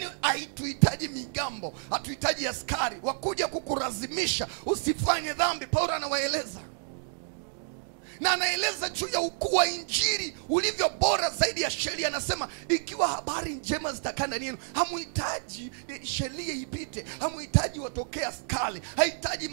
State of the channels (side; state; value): left; silent; digital silence